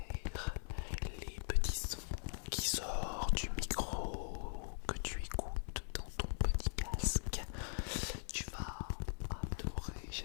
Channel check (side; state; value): right; silent; 50 dB below the other